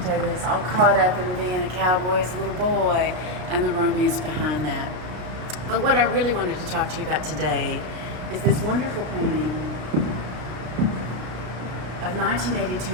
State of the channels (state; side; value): late; left; 33 ms